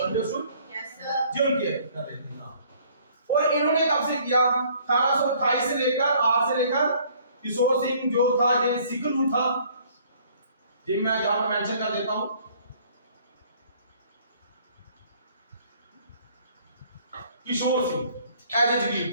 अंडरस्टूड जो उनके कर रहे थे। और इन्होंने कब से किया? 1828 से लेकर 8 से लेकर किशोर सिंह जो था ये सिखलू था, जी मैं जहां पर मेंशन कर देता हूं। किशोर सिंह एज ए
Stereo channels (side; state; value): both; inverted; correlation -0.58